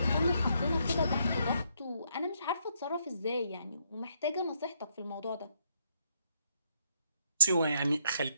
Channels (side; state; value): both; inverted; correlation -0.73